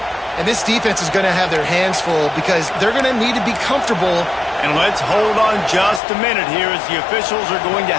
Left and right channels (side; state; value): right; drops out; at 6.0 s